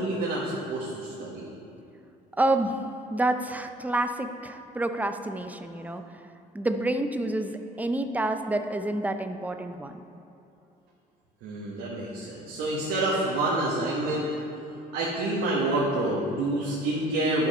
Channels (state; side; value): normal; both; correlation 0.55